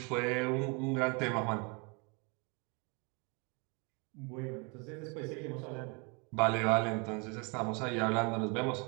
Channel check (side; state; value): left; quieter; 32.0 dB